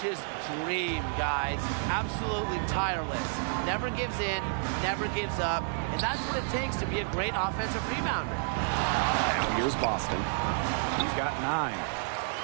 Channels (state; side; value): silent; left; 55 dB below the other